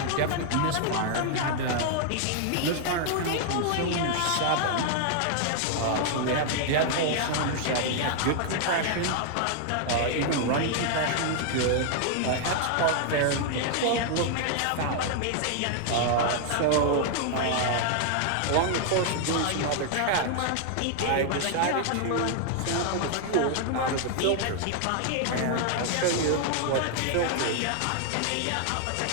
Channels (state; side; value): different; both; correlation 0.00